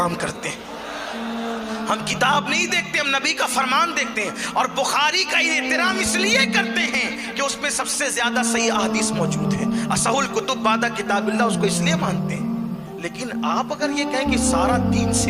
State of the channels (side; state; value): both; identical; correlation 1.00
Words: करते हैं। हम किताब नहीं देखते, हम नबी का फरमान देखते हैं। और बुखारी का एहतराम इसलिए करते हैं कि उसमें सबसे ज्यादा सही अहादीस मौजूद है। असहुल कुतुब बादा किताबिल्लाह, उसको इसलिए मानते हैं। लेकिन आप अगर ये कहें कि सारा दीन